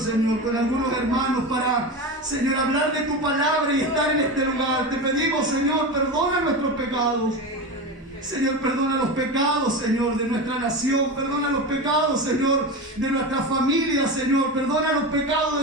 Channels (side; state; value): both; normal; correlation 0.23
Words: Señor, con algunos hermanos para, Señor, hablar de tu palabra y estar en este lugar. Te pedimos, Señor, perdona nuestros pecados. Señor, perdona los pecados, Señor, de nuestra nación. Perdona los pecados, Señor, de nuestra familia, Señor. Perdona los pecados